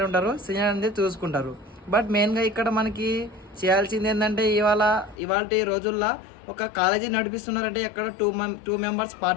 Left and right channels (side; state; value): right; drops out; at 5.2 s